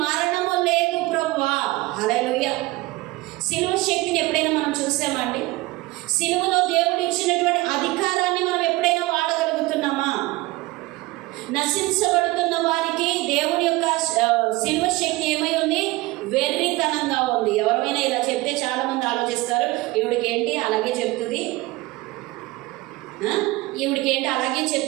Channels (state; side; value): quieter; left; 20.6 dB